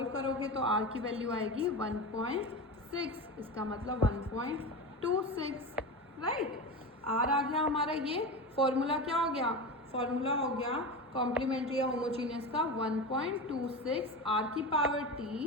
करोगे तो r की वैल्यू आएगी 1.6, इसका मतलब 1.26, राइट। r आ गया हमारा, ये फॉर्मूला क्या हो गया, फॉर्मूला हो गया कॉम्प्लीमेंट्री या होमोजीनियस का 1.26 r की power t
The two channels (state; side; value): normal; both; correlation 0.24